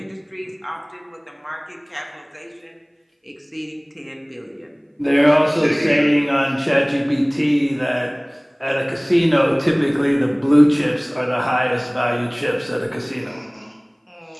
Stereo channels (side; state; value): both; identical; correlation 1.00